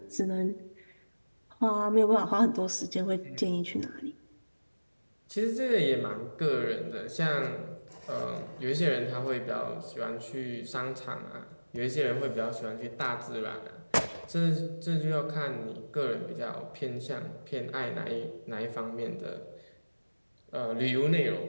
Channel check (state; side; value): inverted; both; correlation -1.00